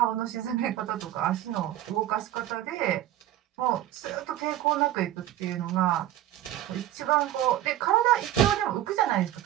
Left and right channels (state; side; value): quieter; left; 13.1 dB